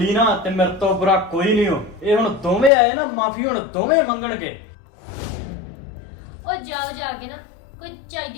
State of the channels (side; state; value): right; drops out; at 2.7 s